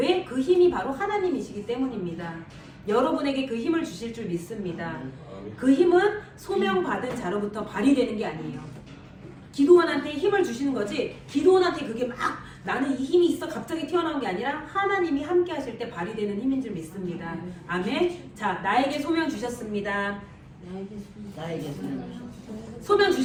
그 힘이 바로 하나님이시기 때문입니다. 여러분에게 그 힘을 주실 줄 믿습니다. 그 힘은 소명받은 자로부터 발휘되는 게 아니에요. 기도원한테 힘을 주시는 거지 기도원한테 그게 막 나는 이 힘이 있어 갑자기 튀어나온 게 아니라 하나님이 함께 하실 때 발휘되는 힘인 줄 믿습니다. 아멘. 자, 나에게 소명 주셨습니다. 나에게 소명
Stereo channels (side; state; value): both; identical; correlation 1.00